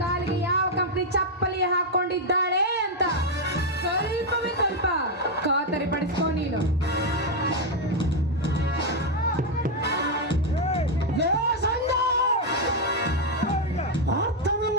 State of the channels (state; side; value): normal; both; correlation 0.01